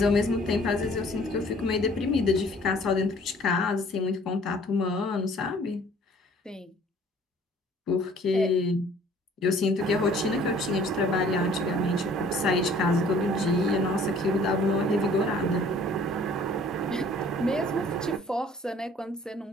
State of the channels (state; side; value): normal; both; correlation 0.54